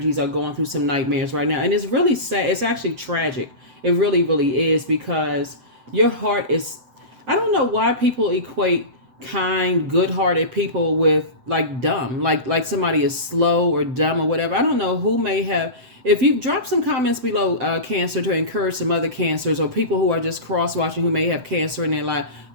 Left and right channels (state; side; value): late; left; 7.8 ms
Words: are going through some nightmares right now, and it's really sad. It's actually tragic. It really, really is, because your heart is, I don't know why people equate kind, good-hearted people with like dumb, like somebody is slow or dumb or whatever. I don't know who may have. If you drop some comments below, Cancer, to encourage some other Cancers or people who are just cross-watching who may have Cancer in their life,